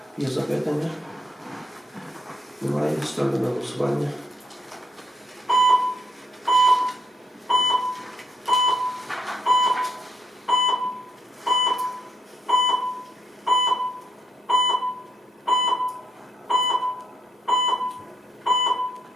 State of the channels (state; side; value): normal; both; correlation 0.75